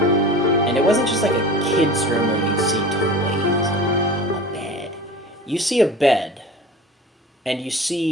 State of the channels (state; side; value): normal; both; correlation 0.37